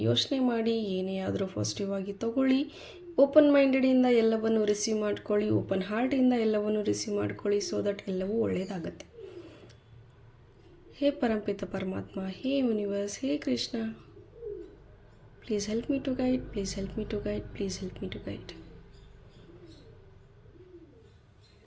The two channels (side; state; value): both; identical; correlation 1.00